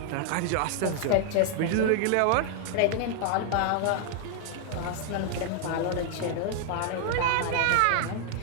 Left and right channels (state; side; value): different; both; correlation 0.00